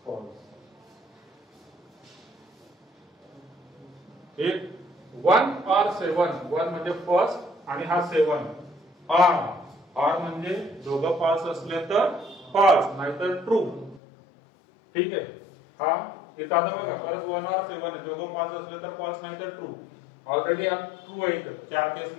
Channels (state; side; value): drops out; right; at 14.0 s